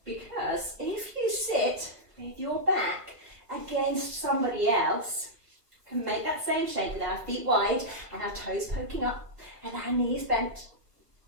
Because if you sit with your back against somebody else, can make that same shape with our feet wide and our toes poking up and our knees bent,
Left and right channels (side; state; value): left; late; 1.4 ms